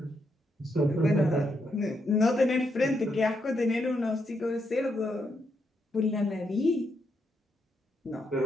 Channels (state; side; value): normal; both; correlation 0.80